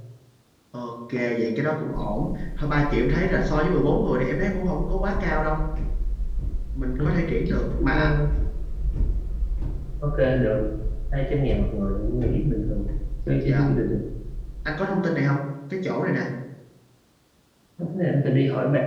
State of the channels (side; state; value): both; identical; correlation 1.00